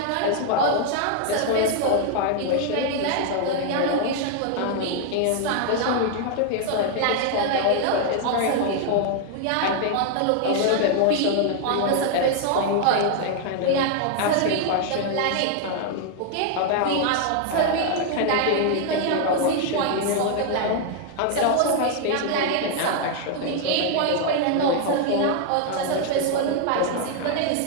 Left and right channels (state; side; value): different; both; correlation 0.00